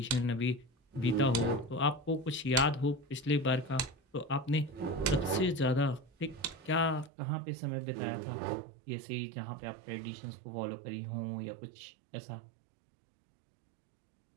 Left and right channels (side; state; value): left; drops out; at 7.1 s